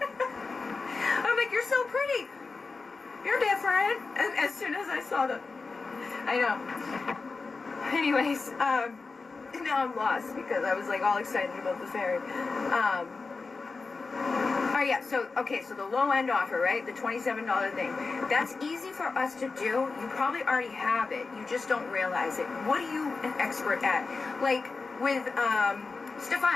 I'm like, you're so pretty. You're different. And as soon as I saw I know. Anyways, now I'm lost because I was like all excited about the fairy. Oh yeah, so the low end offer, right? The $27 thing. That's easy for us to do. You probably already have it. You just don't realize it. What are you an expert at? Like with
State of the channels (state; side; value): quieter; right; 4.2 dB